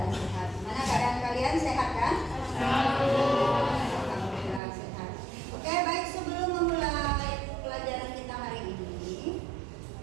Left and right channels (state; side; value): drops out; left; at 4.6 s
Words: sehat. Mana keadaan kalian sehat kan? Alhamdulillah sehat. Oke, baik, sebelum memulai pelajaran kita hari ini,